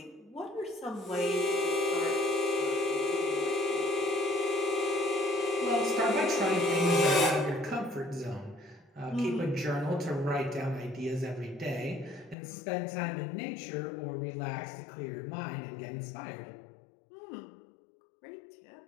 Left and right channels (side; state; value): right; drops out; at 12.4 s